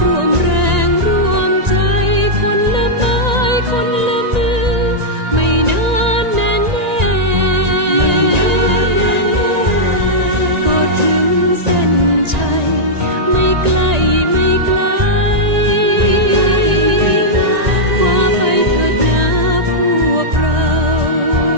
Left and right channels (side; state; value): left; late; 1.9 ms